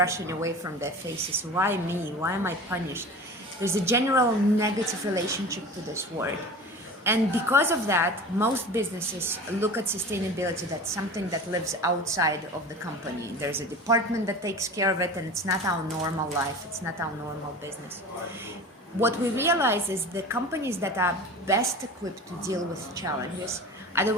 away from their faces. Why me? Why am I punished? There's a general negative relationship to this word. And because of that, most businesses look at sustainability, that's something that lives outside of the company. There's a department that takes care of it, and it's not our normal life, it's not our normal business. What we realize is the companies that are best equipped to deal with challenges are the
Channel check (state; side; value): normal; both; correlation 0.35